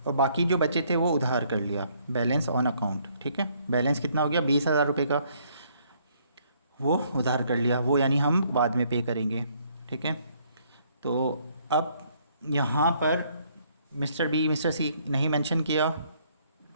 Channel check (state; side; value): inverted; both; correlation -0.67